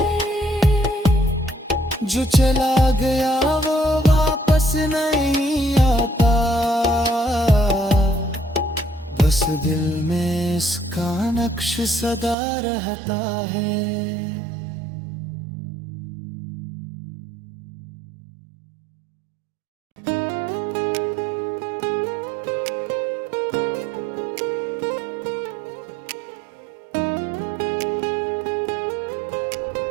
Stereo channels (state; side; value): drops out; left; at 12.4 s